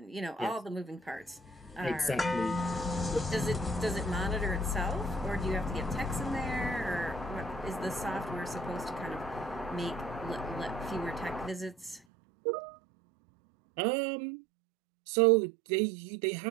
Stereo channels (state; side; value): drops out; left; at 12.0 s